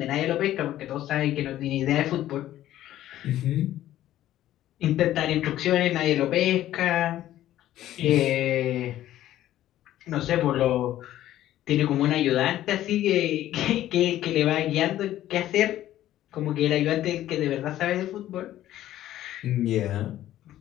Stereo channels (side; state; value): right; quieter; 13.3 dB